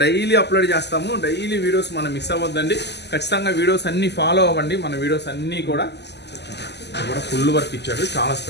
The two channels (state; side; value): late; right; 0.50 ms